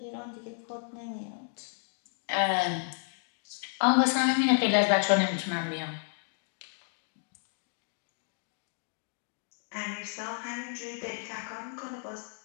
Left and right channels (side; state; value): right; silent; 56 dB below the other